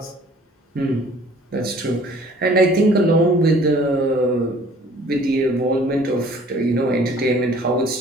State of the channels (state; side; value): normal; both; correlation 0.53